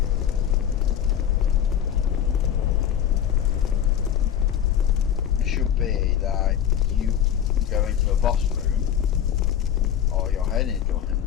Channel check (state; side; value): quieter; right; 9.6 dB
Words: It should be that you go into a boss room or you're heading into one